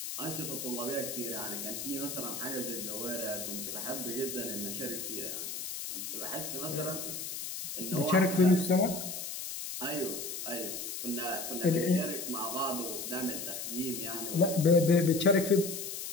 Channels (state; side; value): noise; left; hiss, 6 dB below the sound